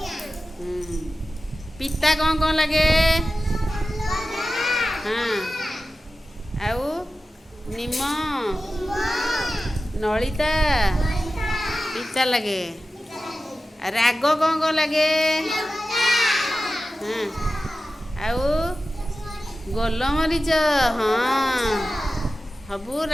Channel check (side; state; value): both; normal; correlation 0.94